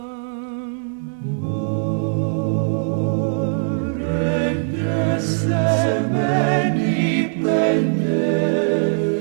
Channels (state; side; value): silent; left; 65 dB below the other